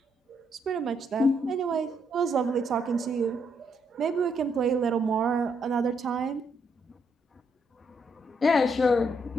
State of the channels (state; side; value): normal; both; correlation 0.75